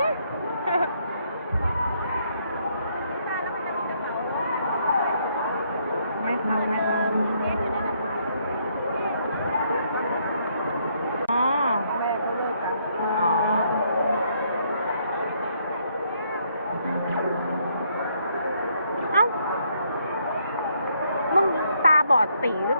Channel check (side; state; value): both; inverted; correlation -0.71